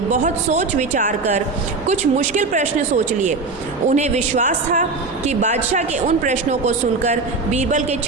सोच विचार कर कुछ मुश्किल प्रश्न सोच लिए। उन्हें विश्वास था कि बादशाह के उन प्रश्नों को सुनकर बीरबल के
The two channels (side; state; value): left; quieter; 3.9 dB